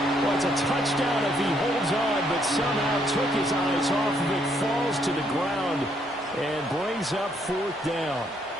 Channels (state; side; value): normal; both; correlation 0.71